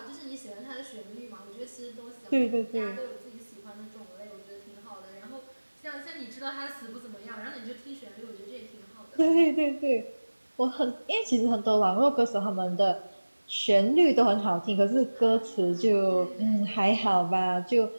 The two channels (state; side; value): inverted; both; correlation -1.00